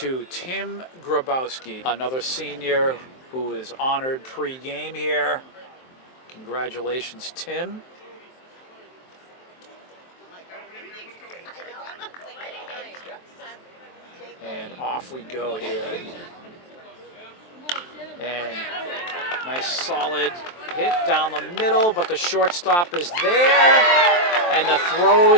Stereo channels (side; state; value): right; late; 23 ms